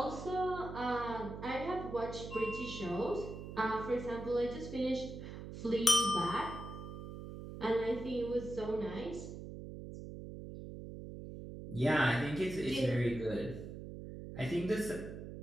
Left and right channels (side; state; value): right; noise; hum, 10 dB below the sound